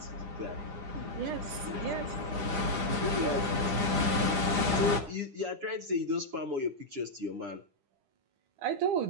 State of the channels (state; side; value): late; left; 9.9 ms